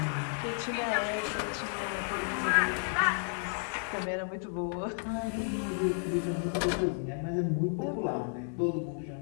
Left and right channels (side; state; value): right; silent; 56 dB below the other